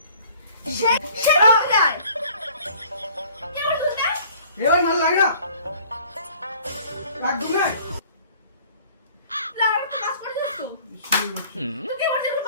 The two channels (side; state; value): both; inverted; correlation -0.52